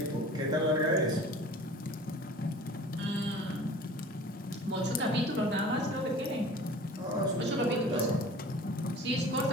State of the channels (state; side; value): normal; both; correlation 0.43